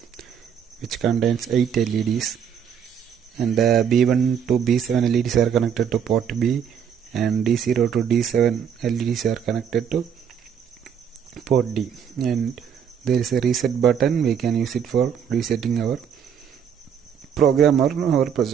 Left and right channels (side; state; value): left; quieter; 7.9 dB